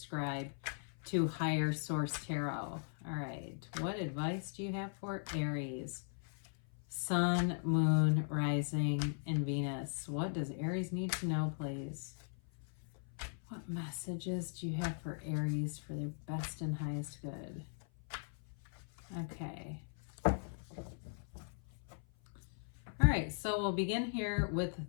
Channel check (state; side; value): silent; right; 52 dB below the other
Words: to Higher Source Tarot. All right, what advice do you have for Aries? Sun, Moon, Rising, and Venus. What does Aries need to know, please? What messages do you have for Aries for their best and highest good? Okay. All right, so we'll begin here with